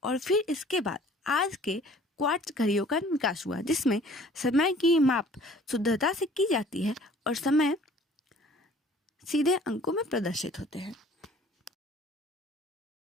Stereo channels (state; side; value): normal; both; correlation 0.52